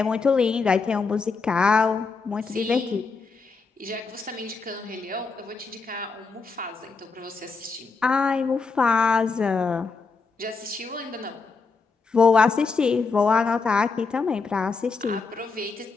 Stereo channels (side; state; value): right; quieter; 4.5 dB